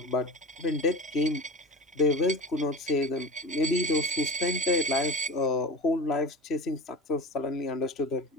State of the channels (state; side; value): normal; both; correlation 0.32